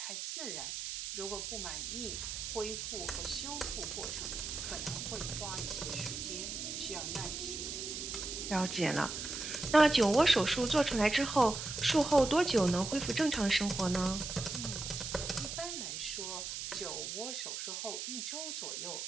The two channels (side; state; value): right; noise; hiss, 5 dB below the sound